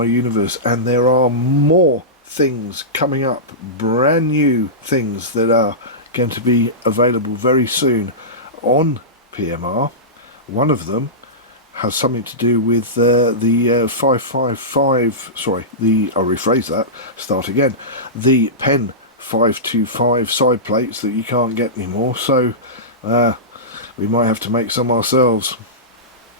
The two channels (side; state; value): both; normal; correlation -0.17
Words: universe, and there are more things coming up, brand new things that are going to be available very soon on PMR. One of them has something to do with the 555, sorry, I'll rephrase that, start again, the Pen 525 side plates that you can't get anymore, so we might have to make some ourselves.